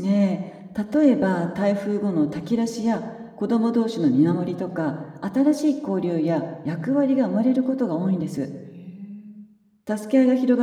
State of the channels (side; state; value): both; identical; correlation 1.00